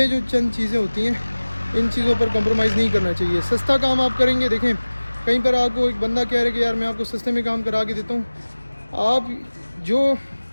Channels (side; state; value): both; inverted; correlation -1.00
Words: जो चंद चीज़ें होती हैं इन चीज़ों पर कॉम्प्रोमाइज़ नहीं करना चाहिए। सस्ता काम आप करेंगे, देखें कहीं पर आपको एक बंदा कह रहे कि यार मैं आपको सस्ते में काम करा के देता हूँ, आप जो